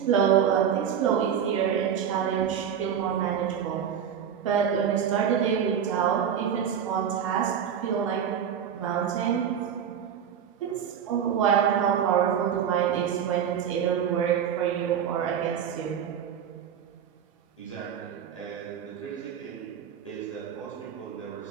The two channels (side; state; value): left; quieter; 8.4 dB